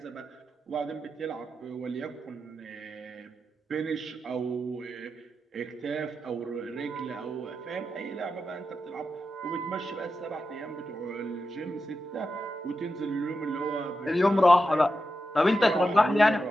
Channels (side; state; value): both; normal; correlation 0.89